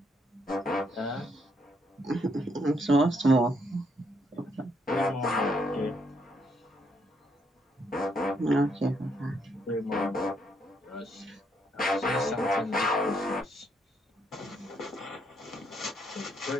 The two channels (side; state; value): both; normal; correlation 0.73